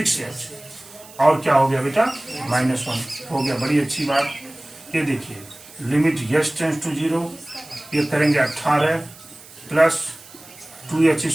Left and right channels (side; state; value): right; noise; hiss, 20 dB below the sound